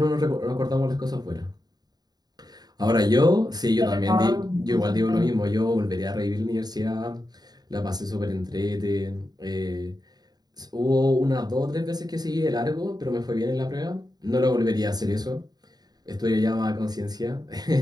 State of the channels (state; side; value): late; left; 0.19 ms